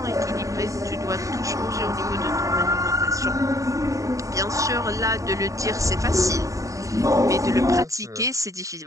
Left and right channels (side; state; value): left; late; 0.16 ms